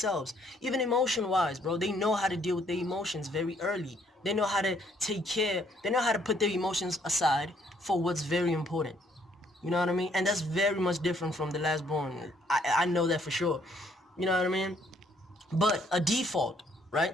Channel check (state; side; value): normal; both; correlation 0.67